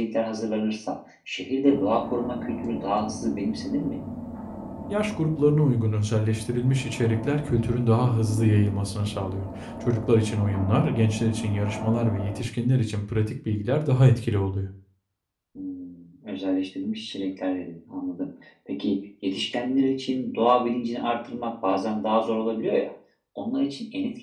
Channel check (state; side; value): identical; both; correlation 1.00